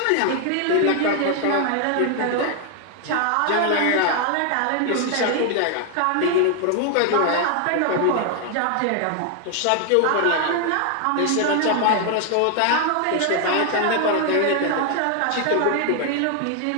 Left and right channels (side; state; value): both; different; correlation 0.00